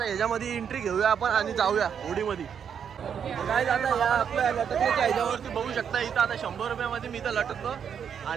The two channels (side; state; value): left; quieter; 7.7 dB